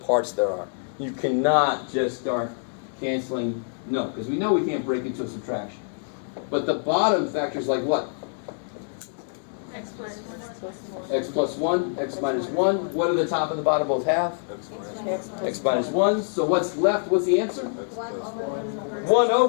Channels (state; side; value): silent; right; digital silence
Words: parts there are. You cannot just start canceling, no, because we know we can't break into a subtraction. But the bottom factors like what? X plus 1. X plus 1, x minus 1. What do the top and the bottom both have? X minus 1. So what's left? What's the answer? 1 over 1